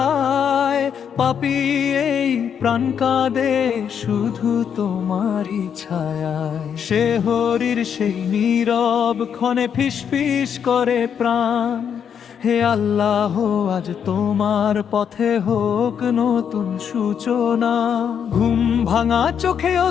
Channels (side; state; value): right; quieter; 7.9 dB